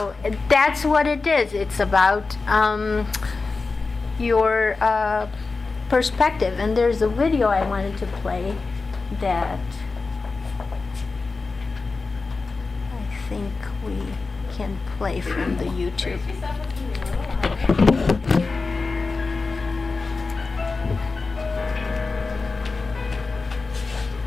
that's what it is. It's about your perspective. And there's a video I wanted to play that I think we can play from the YouTube.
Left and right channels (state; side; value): quieter; right; 4.0 dB